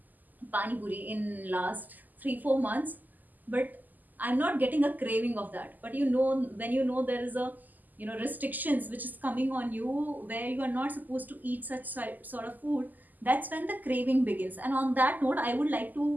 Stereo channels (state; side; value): late; left; 0.084 ms